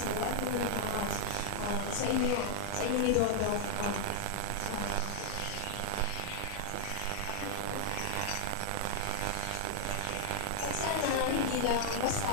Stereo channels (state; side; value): different; both; correlation 0.00